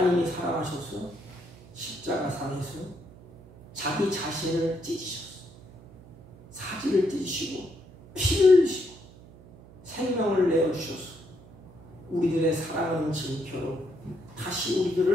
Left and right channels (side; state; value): right; noise; hum, 21 dB below the sound